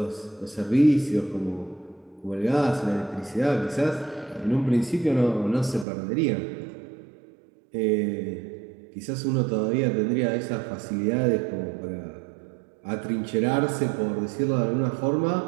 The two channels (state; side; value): drops out; left; at 5.9 s